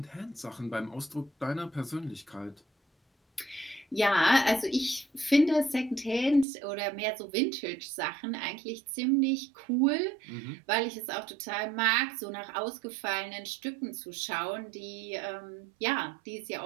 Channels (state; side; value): drops out; left; at 6.5 s